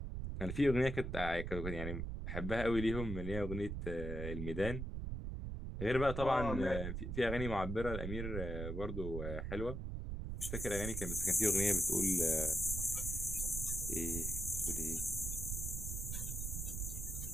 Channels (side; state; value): right; noise; rumble, 4 dB below the sound